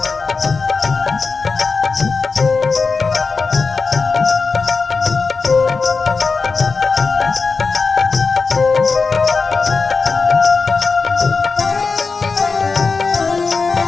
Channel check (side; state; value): right; quieter; 4.5 dB